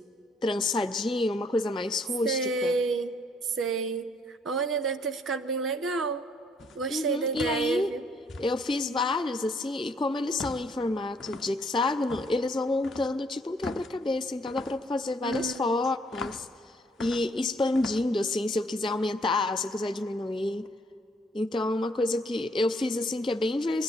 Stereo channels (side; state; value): both; normal; correlation 0.66